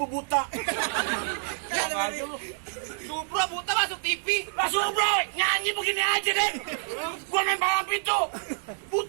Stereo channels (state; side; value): silent; left; digital silence